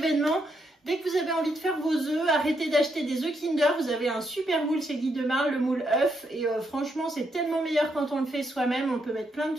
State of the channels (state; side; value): normal; both; correlation 0.78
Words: Dès que vous avez envie de faire vos œufs, arrêtez d'acheter des œufs Kinder. Vous avez un super moule, c'est Guy de Marle, le moule œuf. Et franchement, c'est tellement meilleur quand on le fait soi-même. On peut mettre plein de